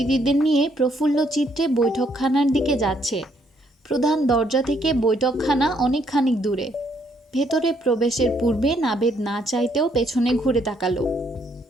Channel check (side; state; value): both; normal; correlation 0.70